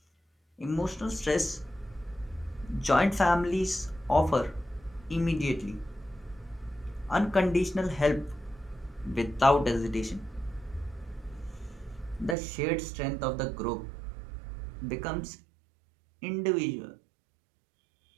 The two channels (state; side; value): drops out; left; at 12.4 s